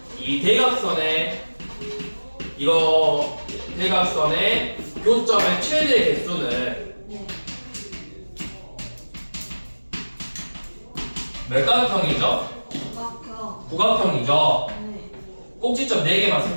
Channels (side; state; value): both; inverted; correlation -1.00